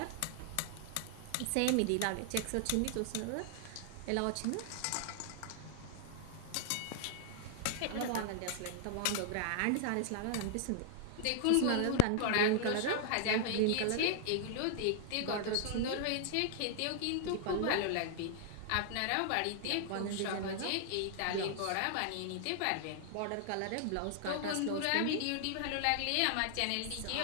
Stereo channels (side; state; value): both; different; correlation 0.00